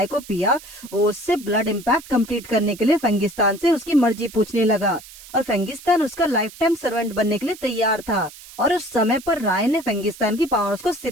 को पिया, वो उससे ब्लड इम्पैक्ट कंप्लीट करने के लिए फेंगिस्तान से उसकी मर्जी पूछने लगा और फेंगिस्तान उसका लाइफ टाइम सर्वेंट बनने के लिए तैयार था। और उस समय पर राय ने फेंगिस्तान की पावर्स को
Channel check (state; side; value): noise; right; hiss, 18 dB below the sound